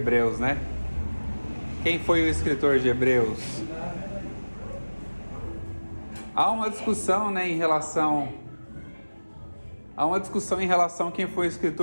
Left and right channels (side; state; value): both; inverted; correlation -1.00